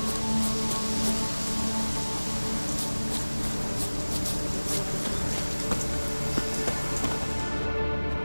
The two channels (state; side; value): inverted; both; correlation -1.00